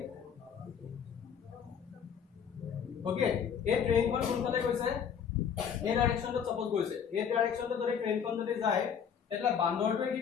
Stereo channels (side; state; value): right; quieter; 7.5 dB